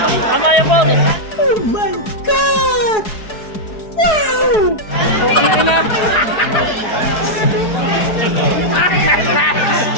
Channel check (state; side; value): late; right; 4.7 ms